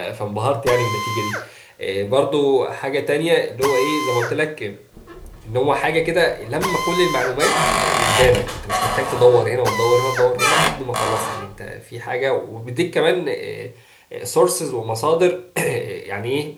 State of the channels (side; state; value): both; identical; correlation 1.00